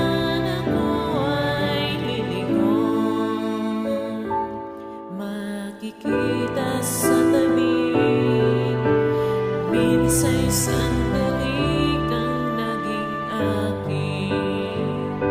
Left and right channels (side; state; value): both; identical; correlation 1.00